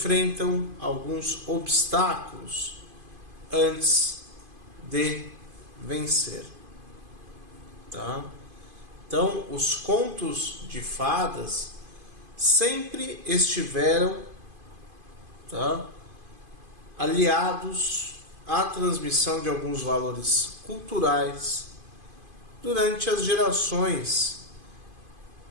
alguns obstáculos antes de vencer, tá? Então, os contos de fadas sempre estiveram, tá, aliados à transmissão de alguns valores culturais durante as gerações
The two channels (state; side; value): late; left; 2.5 ms